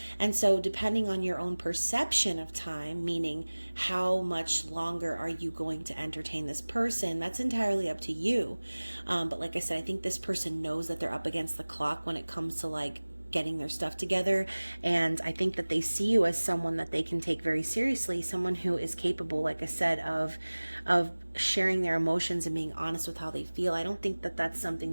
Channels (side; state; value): both; inverted; correlation -1.00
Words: And so depending on your own perception of time, meaning how much longer are you going to entertain this person, that's entirely up to you. But like I said, I think this person knows that they're up against the clock when it comes to like getting their stuff together, and I think that they see you as someone that they can take very seriously, someone who is capable, like I said, of sharing their emotions and being honest with how they feel. I don't think that that's